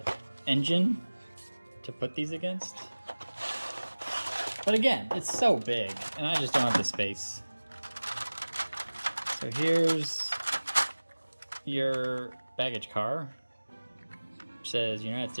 engine to put these against. But again, it's so big and I just don't have the space. So here's your baggage car, which says United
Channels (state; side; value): inverted; both; correlation -1.00